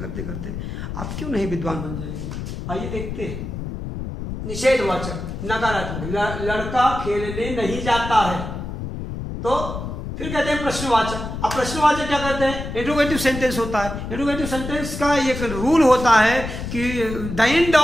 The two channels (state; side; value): noise; left; rumble, 7 dB below the sound